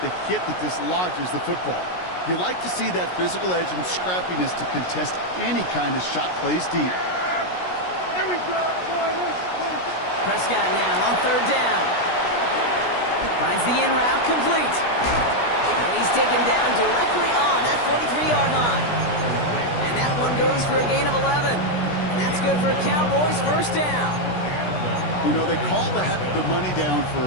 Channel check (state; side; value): late; right; 16 ms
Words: the hit that dislodges the football. You like to see that physical edge and scrappiness to contest any kind of shot plays deep. Here we go. Prescott now on 3rd down. Finds the in route complete. And he's taken down directly on that 43-yard line. And that one goes for a gain of 11. That's good for a Cowboys 1st down. You know, they call that the money down for